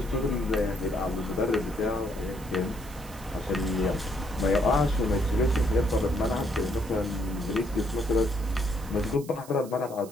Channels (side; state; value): right; noise; hiss, 19 dB below the sound